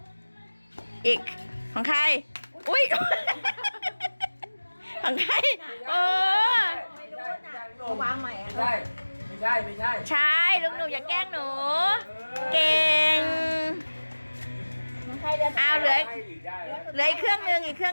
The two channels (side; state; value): both; inverted; correlation -1.00